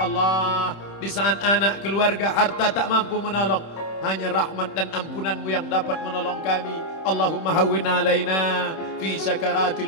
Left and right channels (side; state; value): right; late; 26 ms